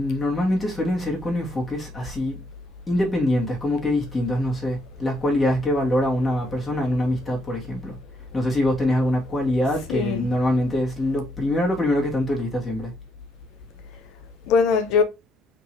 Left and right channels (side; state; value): both; normal; correlation 0.73